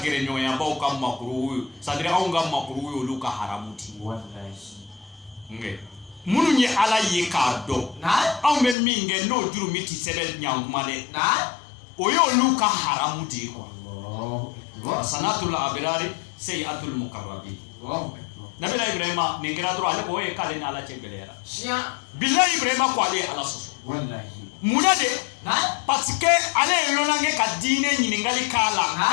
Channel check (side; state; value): right; drops out; at 8.8 s